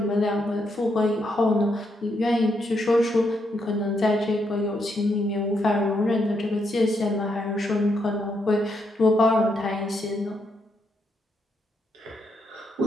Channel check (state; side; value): normal; both; correlation 0.78